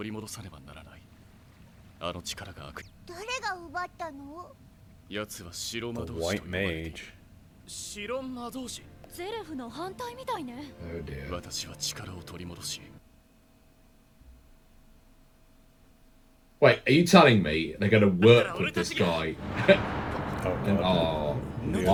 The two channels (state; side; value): identical; both; correlation 1.00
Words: り戻さねばならないあの力が悪誰が奪ったの奴は白魔 The 導士 White と呼ばれている Mage. 白魔導士ゼレフの反対みたいね Oh dear. 私は力を取り戻し Wait, are you telling me they're going to work with this guy? Oh, And, God.